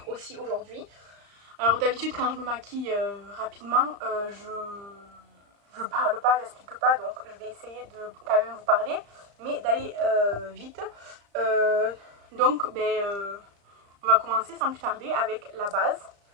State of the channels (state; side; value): late; left; 35 ms